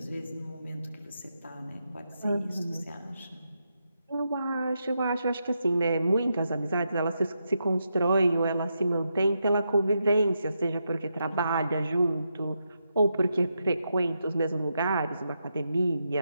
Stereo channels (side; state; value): both; inverted; correlation -0.84